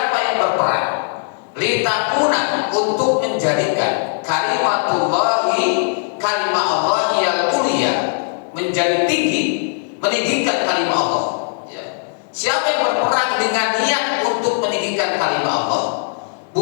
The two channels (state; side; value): silent; right; digital silence